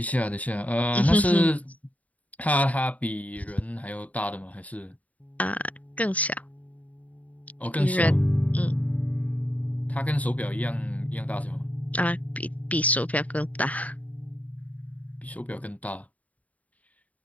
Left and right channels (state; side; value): late; right; 0.071 ms